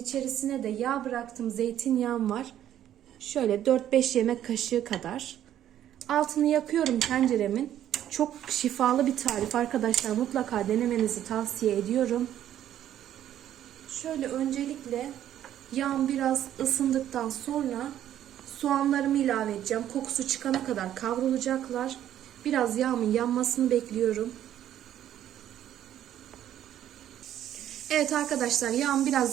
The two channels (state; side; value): quieter; left; 11.3 dB